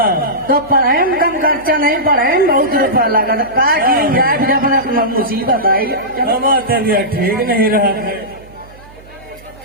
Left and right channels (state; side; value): noise; right; hum, 23 dB below the sound